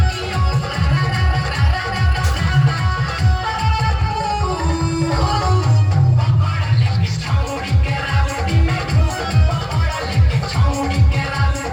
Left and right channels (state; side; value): identical; both; correlation 1.00